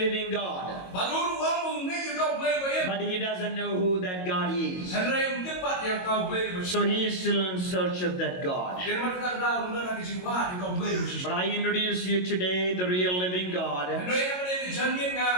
God. But he doesn't know who that God is. So he is still in search of that God. But I introduce you today the real living God. And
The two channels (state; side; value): late; right; 22 ms